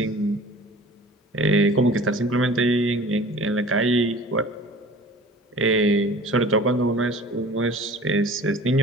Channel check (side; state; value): both; normal; correlation 0.44